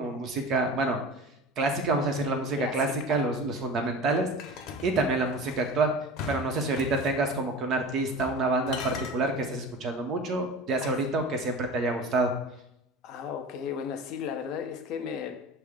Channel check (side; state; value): both; normal; correlation 0.34